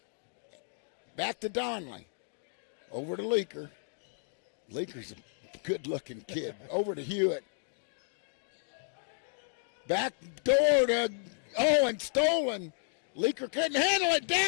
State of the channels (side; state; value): right; silent; digital silence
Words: Back to Donnelly. Over to Leaker. Leaker's a good-looking kid. Over to Hewitt. Back door to, and stolen. Leaker couldn't handle it.